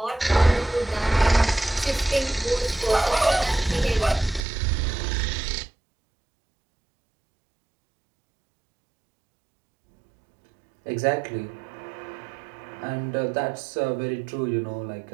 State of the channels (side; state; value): left; drops out; at 4.4 s